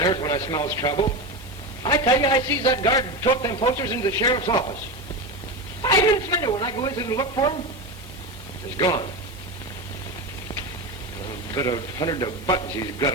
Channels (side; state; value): right; noise; hiss, 23 dB below the sound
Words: when I smells trouble. I tell you, I sees that guard tote them posters into the sheriff's office. 5 minutes later, when I go in to look for them, he's gone. A bit of hundred of buttons, he's got